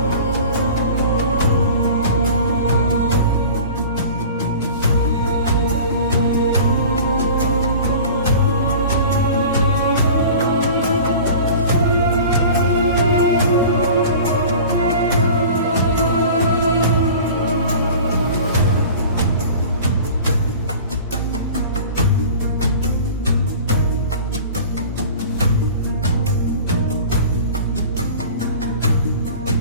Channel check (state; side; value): inverted; both; correlation -0.40